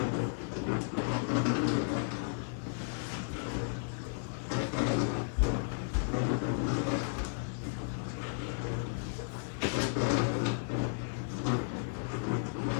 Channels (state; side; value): silent; right; digital silence